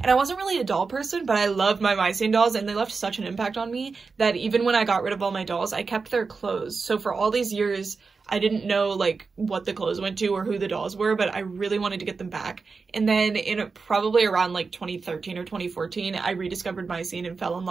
I wasn't really a doll person, but I loved my My Scene dolls, and they left such an impact on me that even when I got rid of all my dolls, I kept their clothes. So for all these years, I didn't know, like, what the clothes went to or who the dolls were, but I really wanted to get them back. And then in probably around, like, 2013 or 2014, I rediscovered My Scene and fell in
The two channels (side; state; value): left; quieter; 4.6 dB